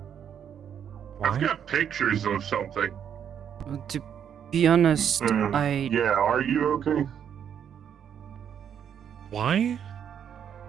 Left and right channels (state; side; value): quieter; left; 8.6 dB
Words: I've got pictures of something. To be honest, Yeah, are you okay? Why?